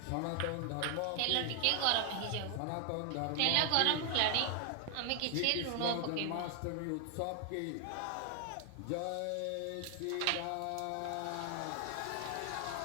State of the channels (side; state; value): both; different; correlation 0.00